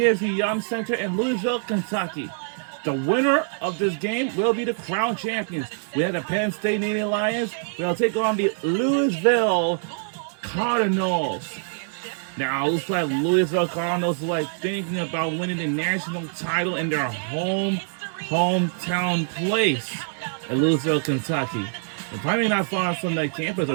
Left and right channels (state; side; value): silent; left; 56 dB below the other